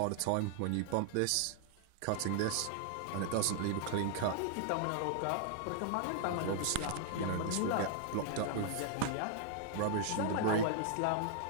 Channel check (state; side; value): different; both; correlation -0.01